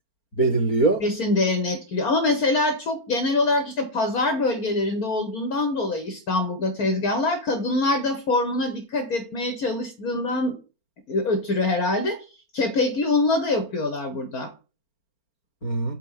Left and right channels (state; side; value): late; right; 4.4 ms